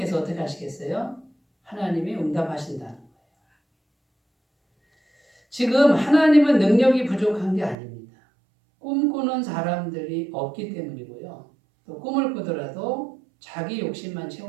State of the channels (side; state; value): left; drops out; at 7.8 s